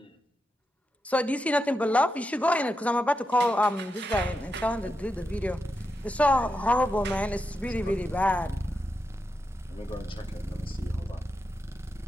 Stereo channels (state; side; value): normal; both; correlation 0.87